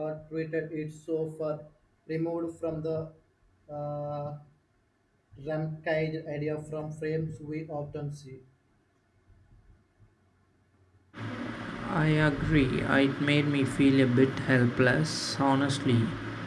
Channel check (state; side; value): identical; both; correlation 1.00